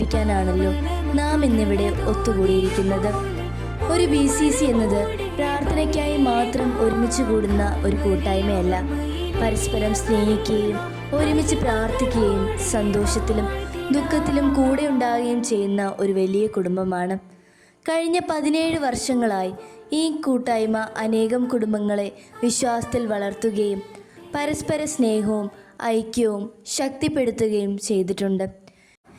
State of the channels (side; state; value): both; identical; correlation 1.00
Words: നാം ഇന്നിവിടെ ഒത്തുകൂടിയിരിക്കുന്നത്. ഒരു BCC എന്നത് പ്രാർത്ഥനയ്ക്കായി മാത്രം ഒരുമിച്ച് കൂടുന്ന ഒരു കൂട്ടായ്മയല്ല, പരസ്പരം സ്നേഹിക്കുകയും ഒരുമിച്ച് പ്രാർത്ഥിക്കുകയും സന്തോഷത്തിലും ദുഃഖത്തിലും കൂടെ ഉണ്ടാകുകയും ചെയ്യുന്ന ഒരു വലിയ കുടുംബമാണ്. കഴിഞ്ഞ 17 വർഷങ്ങളായി ഈ കൂട്ടായ്മ അനേകം കുടുംബങ്ങളെ വിശ്വാസത്തിൽ വളർത്തുകയും പരസ്പര സ്നേഹവും ഐക്യവും ശക്തിപ്പെടുത്തുകയും ചെയ്തിട്ടുണ്ട്.